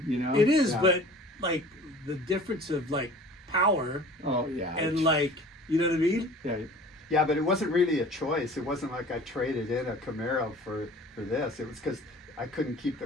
you know? It is, Yeah. but like the difference of like power Oh, yeah. and like, you know what I mean? yeah. yeah, but it wasn't really a choice. It wasn't like I traded in a Camaro for this. It was because I couldn't keep the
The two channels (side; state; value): both; normal; correlation 0.45